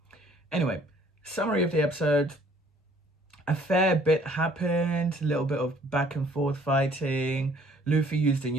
Anyway, summary of the episode. A fair bit happened, a little bit of back and forth fighting. Luffy used a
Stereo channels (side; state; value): both; normal; correlation 0.59